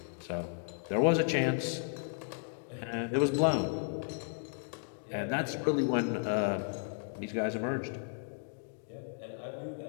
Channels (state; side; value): silent; right; digital silence